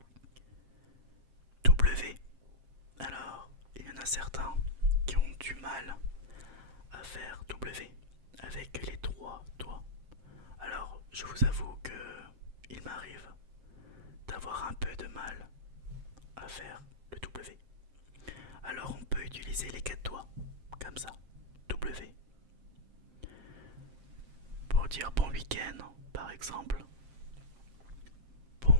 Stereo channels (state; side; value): late; left; 7.5 ms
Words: W. Alors, il y en a certains qui ont du mal à faire W avec les trois doigts. Alors, je vous avoue que il m'arrive d'avoir un peu de mal à faire le W. Alors, on peut utiliser les quatre doigts, comme ça, W. Pour dire bon week-end, par exemple.